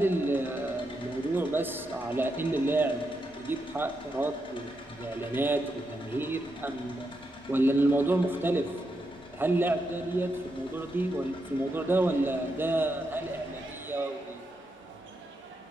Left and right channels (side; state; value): both; normal; correlation 0.84